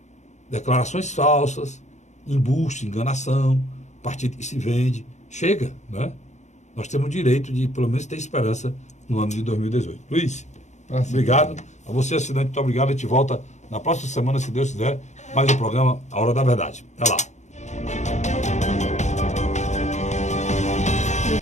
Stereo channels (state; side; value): late; right; 0.34 ms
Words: declarações falsas, embuste, enganação, partido que se vende. Chega, né? Nós temos o direito de, pelo menos, ter esperança no ano de 2018. Luiz, obrigado. A você, assinante, muito obrigado. A gente volta na próxima semana, se Deus quiser, mais um programa A Hora da Verdade. Até lá.